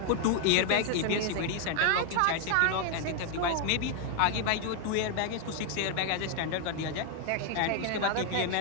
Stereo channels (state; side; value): different; both; correlation 0.00